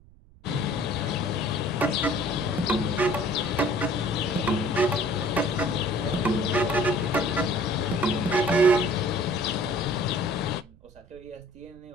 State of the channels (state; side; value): noise; right; rumble, 25 dB below the sound